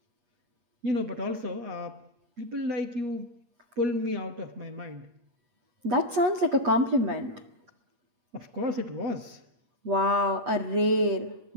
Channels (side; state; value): left; late; 8.4 ms